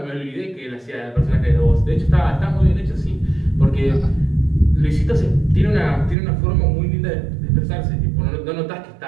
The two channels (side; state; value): left; drops out; at 6.2 s